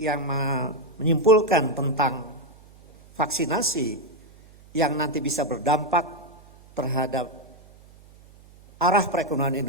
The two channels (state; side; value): noise; right; hum, 25 dB below the sound